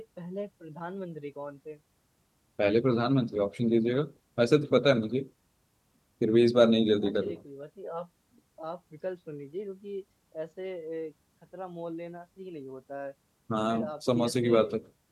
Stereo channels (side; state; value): both; identical; correlation 1.00